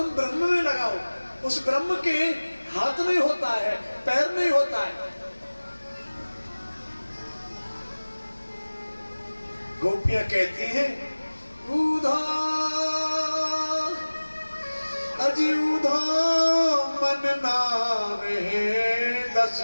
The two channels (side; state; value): both; inverted; correlation -1.00